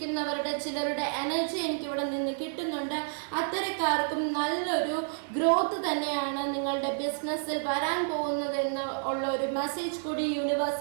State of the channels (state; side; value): silent; left; digital silence